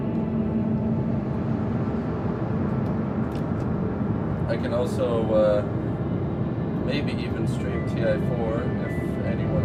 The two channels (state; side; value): identical; both; correlation 1.00